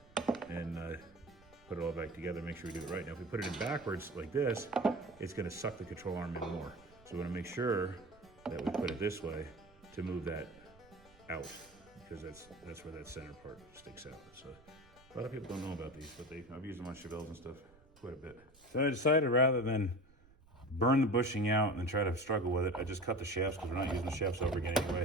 and put it all back together, make sure we do it right. Now if we put it in backwards like this, it's gonna suck the control arm in more. So we wanna make sure that we put it this way to move that out, because that's where that center part sticks out. So a lot of people don't know about these, but I've used them on Chevelles and stuff quite a bit. So I decided rather than burn the bushing out and then try to struggle with it, I just cut the shafts because we're not using the shafts over again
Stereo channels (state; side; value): noise; right; rumble, 27 dB below the sound